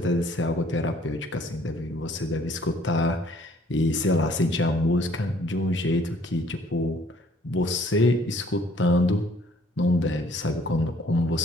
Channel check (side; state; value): both; normal; correlation 0.59